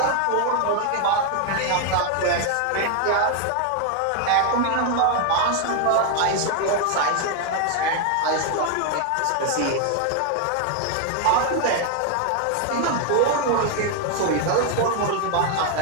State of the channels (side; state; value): both; different; correlation 0.00